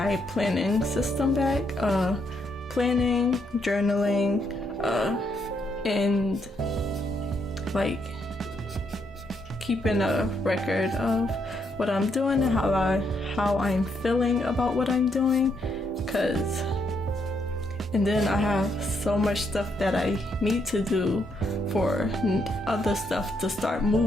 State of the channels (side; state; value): both; normal; correlation 0.76